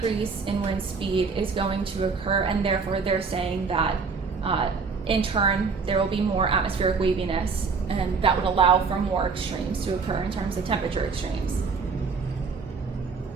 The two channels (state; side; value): quieter; left; 5.0 dB